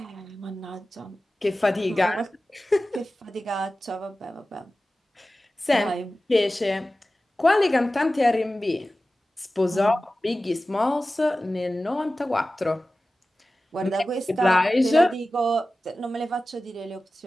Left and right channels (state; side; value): normal; both; correlation 0.95